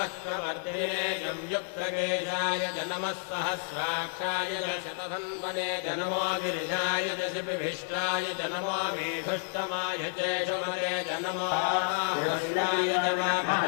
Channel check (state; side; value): silent; right; digital silence